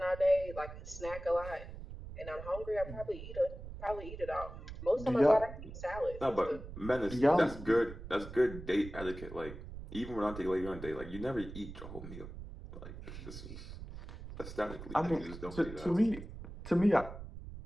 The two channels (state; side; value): noise; right; rumble, 12 dB below the sound